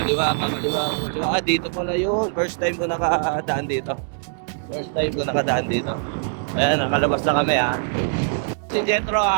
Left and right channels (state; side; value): silent; left; digital silence